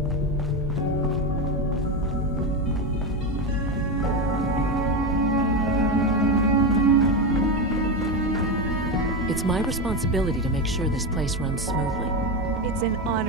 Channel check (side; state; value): both; normal; correlation 0.14